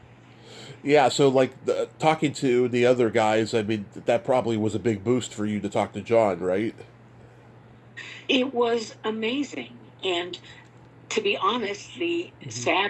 Yeah, so like talking to the other guys, I mean that probably was a big boost for you to talk to John, right? It was amazing. And to be honest, the Mm-hmm.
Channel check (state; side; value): identical; both; correlation 1.00